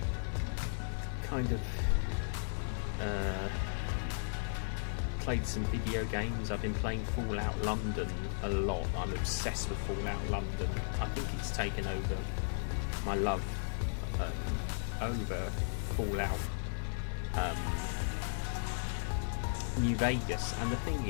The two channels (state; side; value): silent; right; digital silence